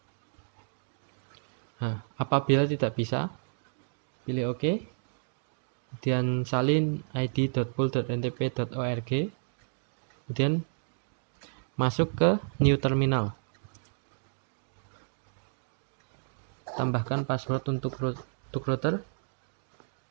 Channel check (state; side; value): silent; left; digital silence